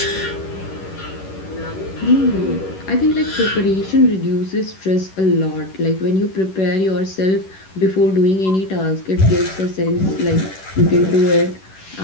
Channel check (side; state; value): right; late; 11 ms